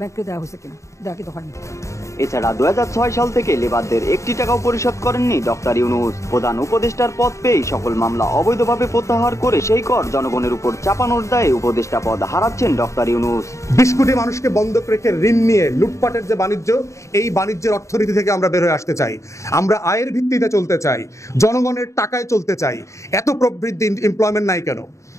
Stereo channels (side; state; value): right; late; 0.14 ms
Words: ব্যাংকে দেওয়া হয়েছে কিনা, দেওয়া কিন্তু হয়নি। এছাড়া 2006 সাল থেকে লেবারদের 1টি টাকাও পরিশোধ করেননি ডক্টর ইউনূস। প্রধান উপদেষ্টার পদ পেয়ে সকল মামলা অবৈধভাবে প্রত্যাহার করে সেই কর জনগণের উপর চাপানোর দায়ে উপদেষ্টা পদ হারাচ্ছেন ডক্টর ইউনূস। 20 কোটি মানুষকে বন্ধক রেখে ঋণ নিয়ে লুটপাটের যে বাণিজ্য, এই বাণিজ্যের অর্থনীতি থেকে আমরা বের হয়ে আসতে চাই। আমরা আয়ের ভিত্তিতে চলতে চাই, জনগণের টাকায় চলতে চাই। এত প্রবৃদ্ধি, এমপ্লয়মেন্ট নাই কেন?